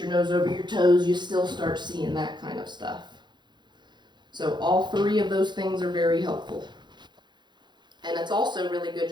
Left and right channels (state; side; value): late; left; 0.21 ms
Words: nose over your toes, you still start seeing that kind of stuff. So all 3 of those things are very helpful. And it's also really good